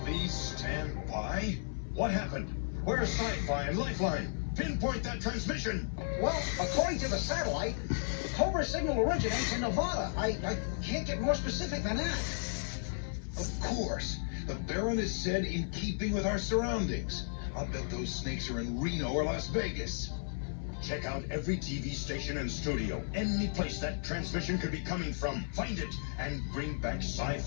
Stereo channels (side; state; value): right; silent; 55 dB below the other